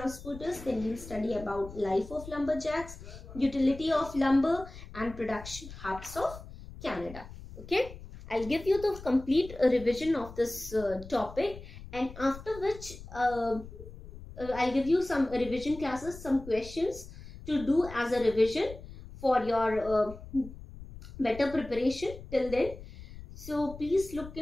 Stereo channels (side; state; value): left; noise; rumble, 15 dB below the sound